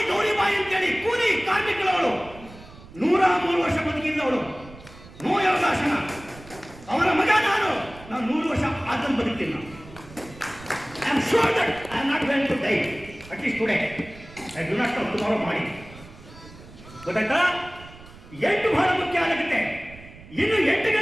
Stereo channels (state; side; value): noise; right; rumble, 19 dB below the sound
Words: ಗೌರಿಬಾಯಿ ಅಂತೇಳಿ ಕೂಲಿ ಕಾರ್ಮಿಕಳವಳು, 103 ವರ್ಷ ಬದುಕಿದ್ದವಳು. ನೋ ಯೋಗಾಸನ. ಅವರ ಮಗ ನಾನು 100 ವರ್ಷ ಆದನ್ನು ಬದುಕ್ತೀನಿ. I am sure that I am not going to die, at least today. I do not know tomorrow ಮಾಡಿ. ಗೊತ್ತಾಯ್ತಾ? 8 ಬಹಳ ಮುಖ್ಯ ಆಗುತ್ತೆ. ಇನ್ನು 8